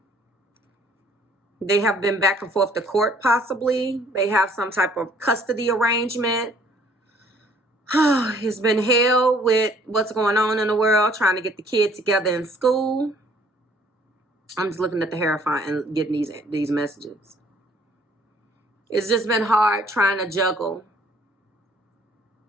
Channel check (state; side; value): normal; both; correlation 0.59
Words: They have been back and forth to court, possibly. They have some type of custody arrangement. It's been hell with what's going on in the world, trying to get the kid together in school. I'm just looking at the Hierophant and getting these messages. It's just been hard trying to juggle